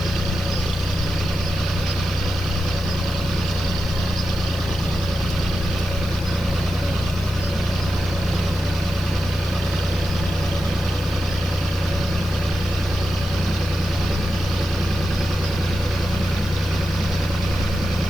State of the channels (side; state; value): right; noise; hiss, 20 dB below the sound